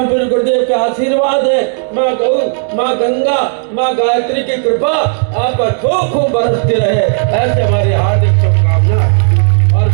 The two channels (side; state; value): left; silent; digital silence